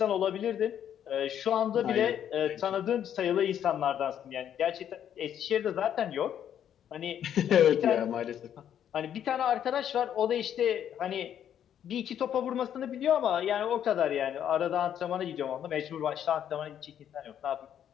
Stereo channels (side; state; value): right; quieter; 9.7 dB